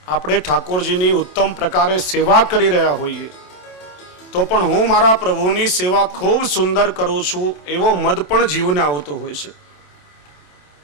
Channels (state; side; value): late; right; 27 ms